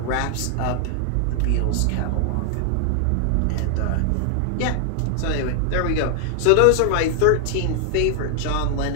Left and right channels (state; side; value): different; both; correlation 0.00